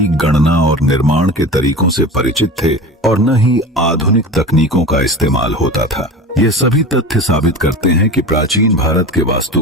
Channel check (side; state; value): both; normal; correlation 0.32